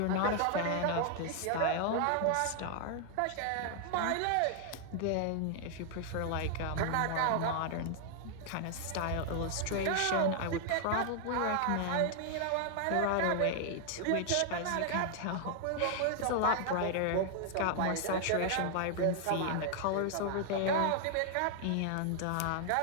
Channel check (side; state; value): both; different; correlation 0.00